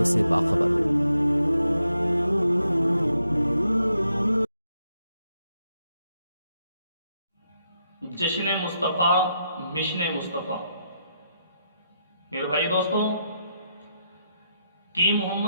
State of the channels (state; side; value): inverted; both; correlation -0.80